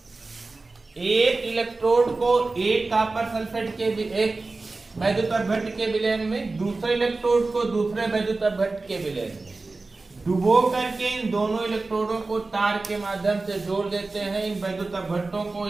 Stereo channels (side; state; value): left; quieter; 3.5 dB